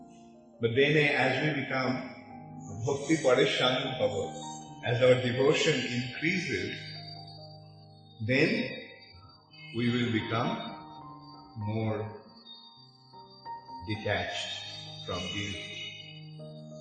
But then as we become Bhakti Parishanu Bhava, as our devotion increases, then we will become more detached from these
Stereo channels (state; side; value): identical; both; correlation 1.00